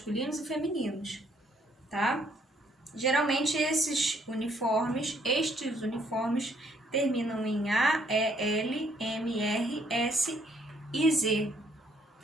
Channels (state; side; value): normal; both; correlation 0.67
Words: e femininos, tá? Geralmente estes uniformes terminam em A, E, L, M, R, S e Z,